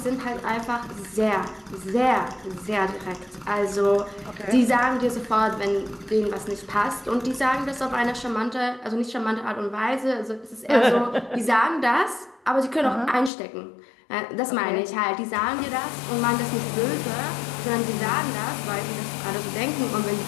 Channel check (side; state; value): right; drops out; at 13.3 s